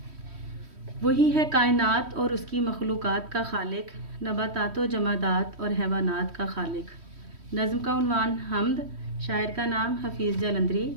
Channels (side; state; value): left; late; 3.1 ms